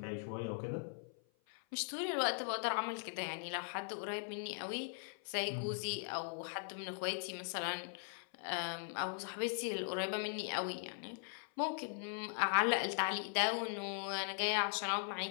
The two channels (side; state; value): right; silent; 51 dB below the other